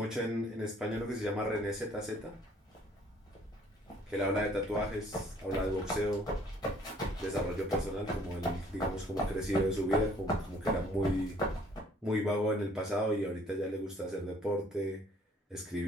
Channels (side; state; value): both; normal; correlation 0.59